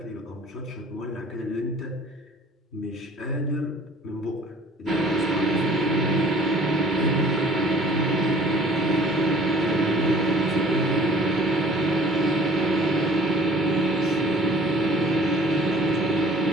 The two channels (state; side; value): normal; both; correlation 0.52